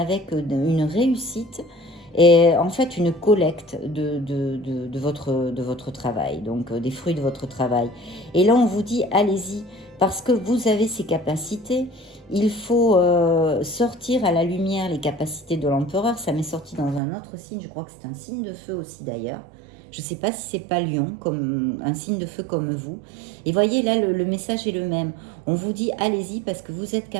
une réussite et en fait une collecte de votre travail, donc des fruits de votre travail. Et là, on vous dit, allez-y, parce que vous avez ces capacités. Il faut sortir à la lumière les capacités de l'empereur. Ça m'est sorti dans un autre signe, je crois que c'est un signe de feu aussi d'ailleurs. Je ne sais pas si c'est pas Lion, comme un signe de feu comme vous. Et voyez, là, le message est le même. On vous dit, allez-y parce que vous êtes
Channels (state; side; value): drops out; left; at 17.0 s